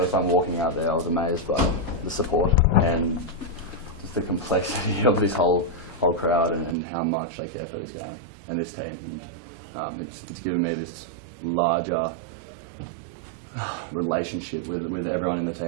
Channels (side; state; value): left; drops out; at 6.8 s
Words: time walking out there, I was amazed by the support and just the complexity of this whole crowd and how much they care for this game and this team. And it's given me this larger relationship with everyone in the